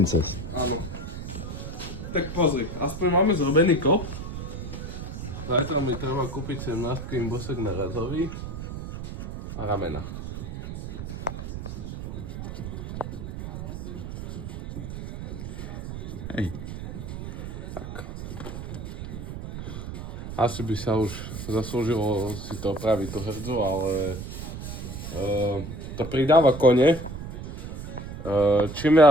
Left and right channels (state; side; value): noise; right; rumble, 8 dB below the sound